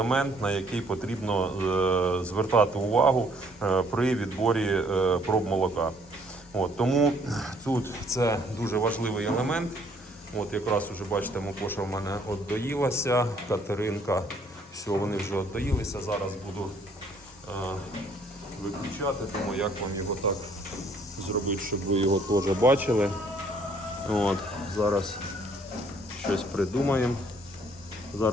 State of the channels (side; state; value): both; normal; correlation 0.64